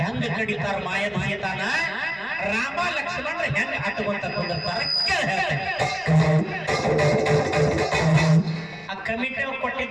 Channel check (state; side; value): noise; left; rumble, 28 dB below the sound